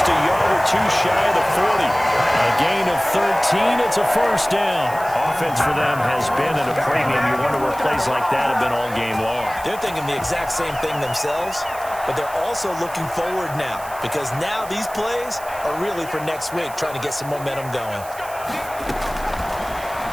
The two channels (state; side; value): noise; right; hiss, 17 dB below the sound